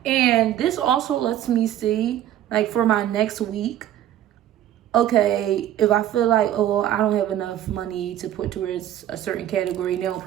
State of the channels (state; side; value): quieter; left; 11.9 dB